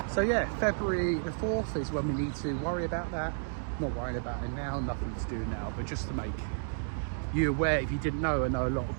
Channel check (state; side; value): silent; left; digital silence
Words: So yeah, February the 4th is when we need to worry about that. Not worrying about it now, nothing to do now, but just to make you aware. If you didn't know, I know a lot